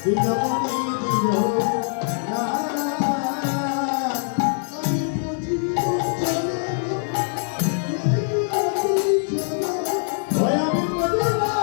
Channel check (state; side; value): silent; right; digital silence